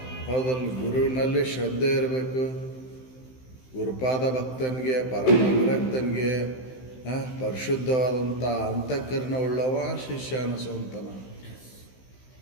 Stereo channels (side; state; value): right; late; 16 ms